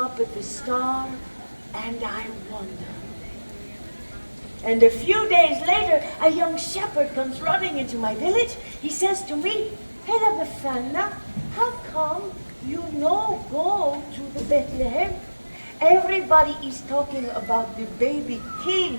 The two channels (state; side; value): inverted; both; correlation -1.00